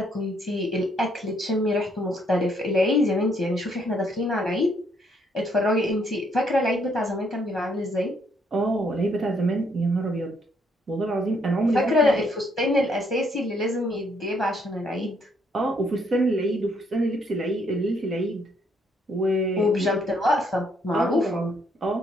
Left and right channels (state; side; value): normal; both; correlation 0.70